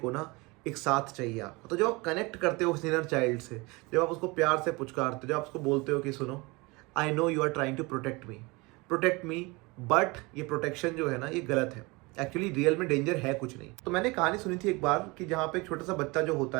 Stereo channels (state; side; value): quieter; left; 25.2 dB